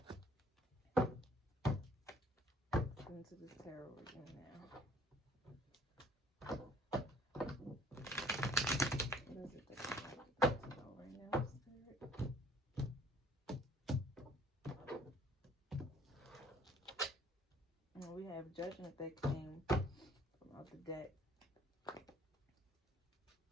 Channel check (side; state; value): both; normal; correlation 0.56